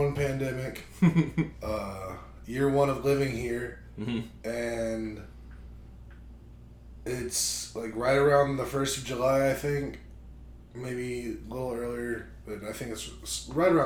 pandemic. Year one of living here. Mm-hmm. And it's like right around the 1st of July, I think. Maybe a little earlier, but I think it's right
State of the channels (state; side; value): identical; both; correlation 1.00